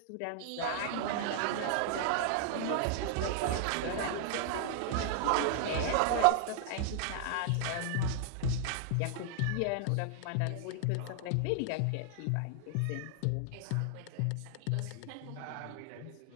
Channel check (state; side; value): different; both; correlation 0.00